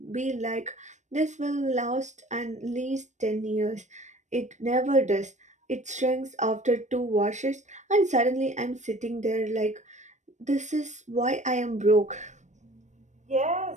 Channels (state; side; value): late; left; 0.34 ms